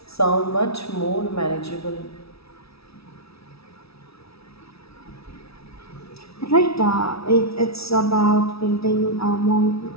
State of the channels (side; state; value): right; late; 0.77 ms